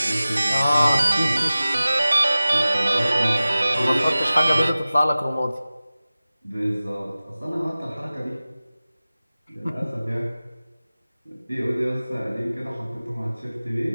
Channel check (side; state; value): both; inverted; correlation -0.97